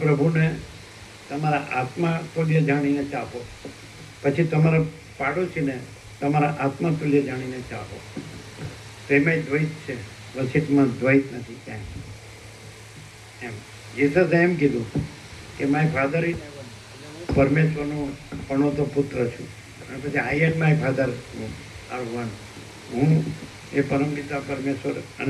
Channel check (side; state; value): both; identical; correlation 1.00